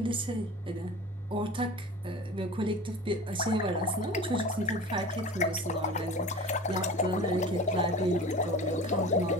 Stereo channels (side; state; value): both; normal; correlation 0.36